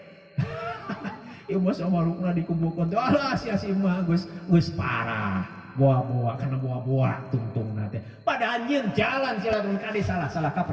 ieu mah samarukna dikumpulkeun alah sia si mah geus parah buah-buah karena buah-buah tungtung nate pada anjing jalan silaturahmi kade salah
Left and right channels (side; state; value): both; identical; correlation 1.00